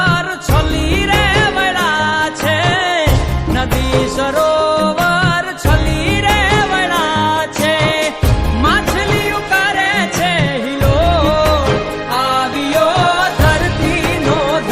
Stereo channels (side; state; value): both; identical; correlation 1.00